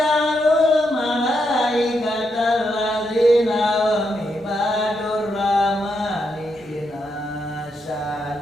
malaikatal ladzina hum ibadur rahmani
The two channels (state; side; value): normal; both; correlation 0.81